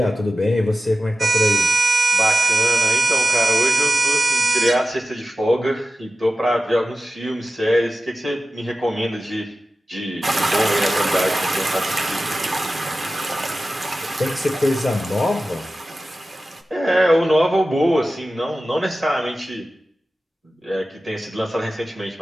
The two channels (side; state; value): both; normal; correlation 0.94